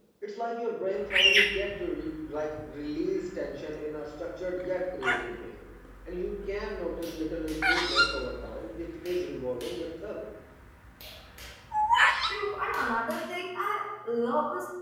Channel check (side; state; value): both; identical; correlation 1.00